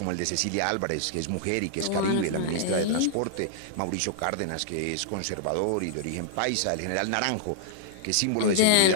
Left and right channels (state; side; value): different; both; correlation -0.01